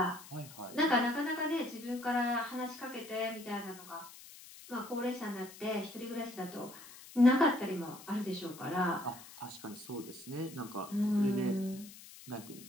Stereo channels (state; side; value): noise; left; hiss, 17 dB below the sound